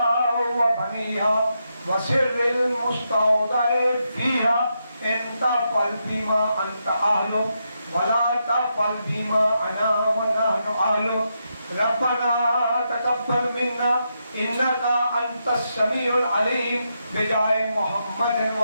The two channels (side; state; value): both; inverted; correlation -0.83